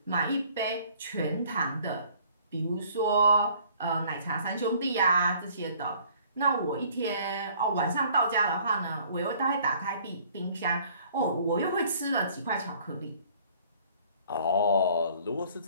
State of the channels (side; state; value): both; inverted; correlation -0.57